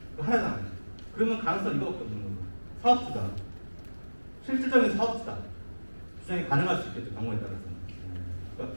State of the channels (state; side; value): inverted; both; correlation -1.00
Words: 하나잖아요. 그러면 가능성 이거밖에 없는 거예요. 사업주다. 실질적인 사업주다. 주장이 가능할 수 있겠죠. 경우에 따라서. 그러니까